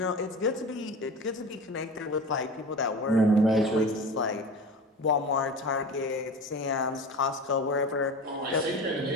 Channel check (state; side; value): normal; both; correlation 0.33